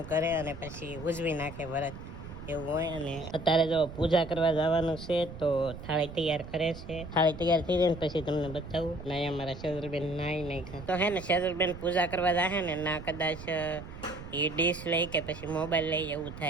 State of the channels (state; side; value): noise; right; rumble, 12 dB below the sound